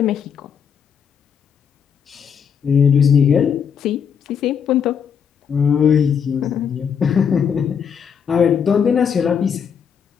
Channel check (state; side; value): quieter; right; 7.3 dB